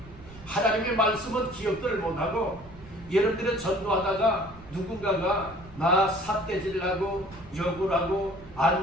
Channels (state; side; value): noise; right; rumble, 20 dB below the sound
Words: 하나님의 말씀은 기억들을 못하고, 여러분들은 전도하다가 누군가가 나 삿대질하고 욕을 하고